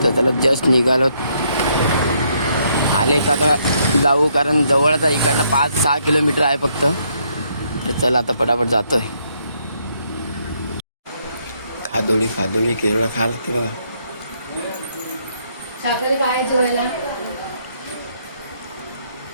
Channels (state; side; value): inverted; both; correlation -0.72